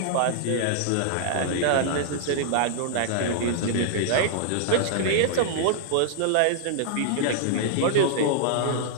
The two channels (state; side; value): different; both; correlation -0.01